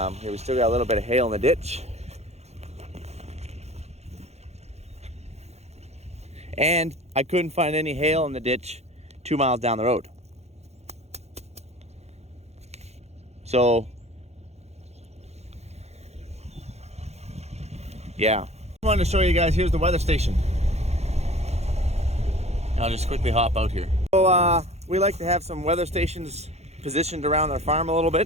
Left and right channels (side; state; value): left; late; 0.31 ms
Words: we still got a little bit of hail in the ditch. And I couldn't find any hail in the ditch 2 miles down the road. So, yeah. I wanted to show you guys, here's the weather station. I'll just quickly hop out here. So, we like to have some weather stations positioned around our farm a little